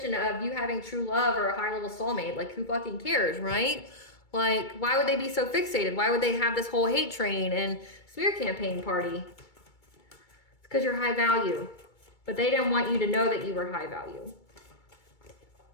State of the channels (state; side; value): late; right; 2.3 ms